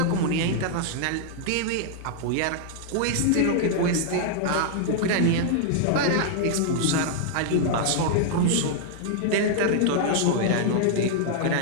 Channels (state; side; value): different; both; correlation -0.01